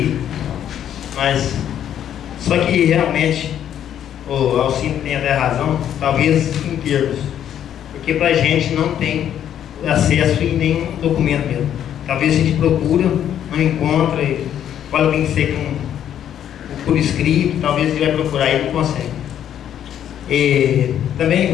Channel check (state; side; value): quieter; right; 10.1 dB